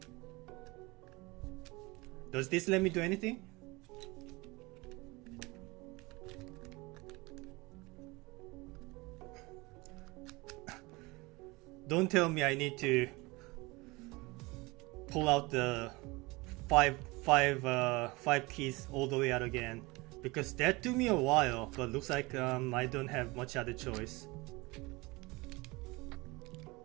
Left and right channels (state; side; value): quieter; left; 23.8 dB